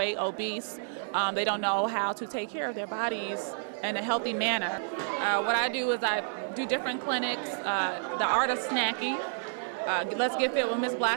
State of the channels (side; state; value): left; silent; digital silence